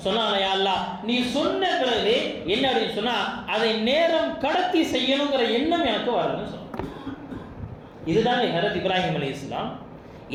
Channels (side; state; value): both; identical; correlation 1.00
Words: சொன்னாங்க? யா அல்லாஹ் நீ சொன்ன பிறகு என்ன அப்படின்னு சொன்னா அதை நேரம் கடத்தி செய்யணுங்கிற எண்ணம் எனக்கு வரலன்னு சொன்னான். இதுதான் ஹஜ்ரத் இப்ராஹிம் அலைஹிஸ்ஸலாம்.